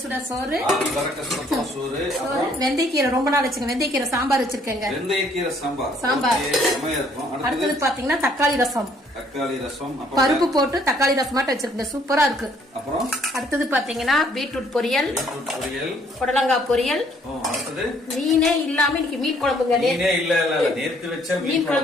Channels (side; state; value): both; normal; correlation 0.64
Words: சுட சோறு, சோறு, வெந்தயக்கீரை ரொம்ப நாள் வச்சுங்க, வெந்தயக்கீரை சாம்பார் வச்சிருக்கேங்க. வெந்தயக்கீரை சாம்பார் இருக்கும். அடுத்தது பாத்தீங்கன்னா தக்காளி ரசம். தக்காளி ரசம் பருப்பு போட்டு தக்காளி ரசம் மட்டும் வச்சிருக்கேன், சூப்பரா இருக்கு. அப்புறம் அடுத்தது பாத்தீங்கன்னா பீட்ரூட் பொரியல், புடலங்காய் பொரியல். மீனே இல்லாம இன்னைக்கு மீன் குழம்புங்க. நேத்து வச்ச மீன்